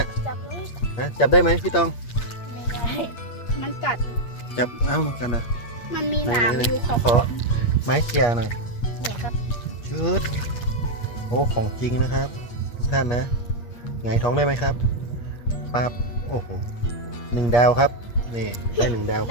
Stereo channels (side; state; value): right; late; 8.4 ms